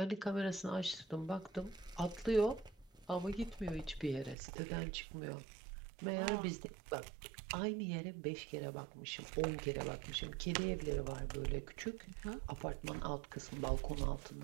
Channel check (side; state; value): left; drops out; at 4.4 s